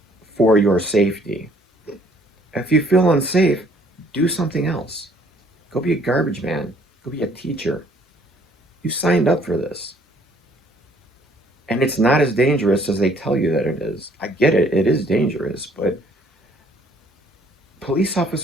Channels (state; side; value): normal; both; correlation 0.61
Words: for your safety. If you feel unsafe, do something else. Go be a garbage man. Go be a teacher. You signed up for this. And it's not as dangerous as they tell you that it is. I get it. It is dangerous. But police